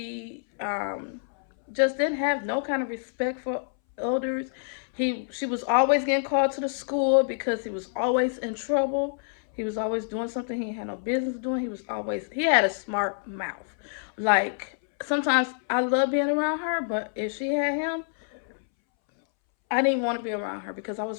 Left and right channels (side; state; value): right; silent; 60 dB below the other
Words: just didn't have no kind of respect for elders. She was always getting called to the school because he was always in trouble. He was always doing something he had no business doing. He had a smart mouth. Like, sometimes I love being around her, but if she had him, I didn't want to be around her because I